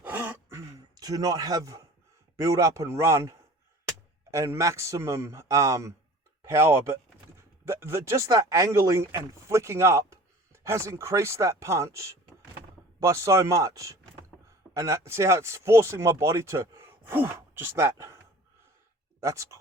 to not have build up and run and maximum power, but just that angling and flicking up has increased that punch by so much. And see how it's forcing my body to, just that. That's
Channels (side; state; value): both; normal; correlation 0.44